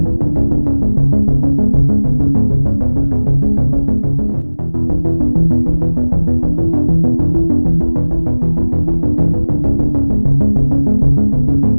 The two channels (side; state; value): both; inverted; correlation -1.00